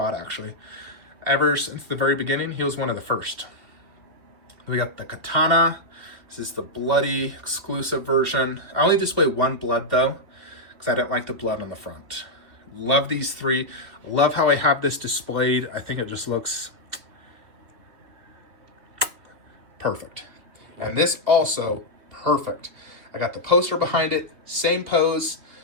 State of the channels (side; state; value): left; late; 2.6 ms